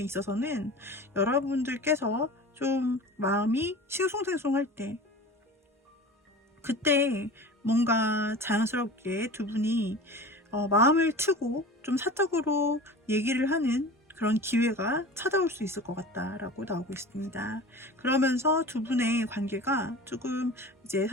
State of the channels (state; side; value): normal; both; correlation 0.36